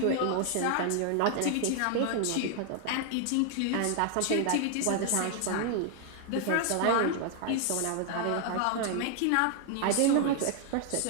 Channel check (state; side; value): different; both; correlation 0.00